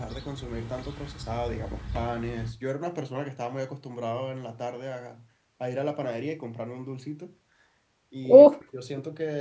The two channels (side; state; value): both; identical; correlation 1.00